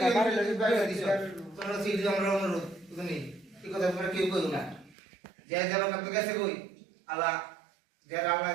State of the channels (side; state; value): left; drops out; at 5.0 s